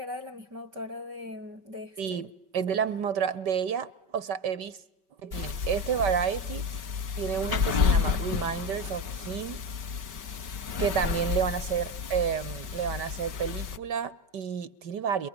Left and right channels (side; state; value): left; late; 5.2 ms